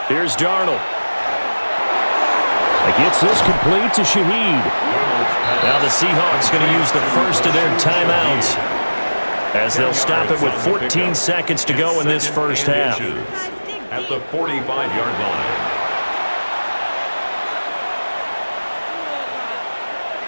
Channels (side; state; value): both; inverted; correlation -1.00